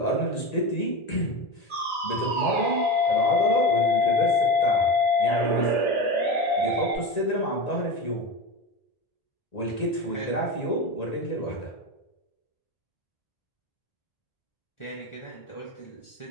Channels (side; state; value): right; late; 1.9 ms